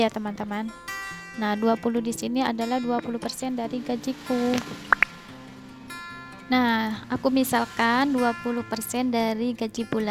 teman-teman. Nah, 20 di sini adalah 20% dari gajiku. Nah, aku misalkan 20% dari gaji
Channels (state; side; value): identical; both; correlation 1.00